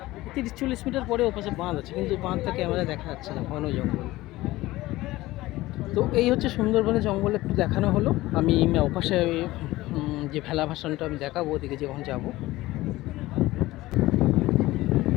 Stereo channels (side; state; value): right; quieter; 17.9 dB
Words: 30-40 মিটার পরে ওপাশে বাঁধ আছে, কিন্তু বাঁধটা ক্যামেরা দেখা যাচ্ছে না, ঘন জঙ্গল। তো এই হচ্ছে সুন্দরবনের জঙ্গল একটু দেখানো হলো। আমি ওপাশে যে ভেলা ভাসানটা আমি দেখাবো, ওদিকে যখন যাব।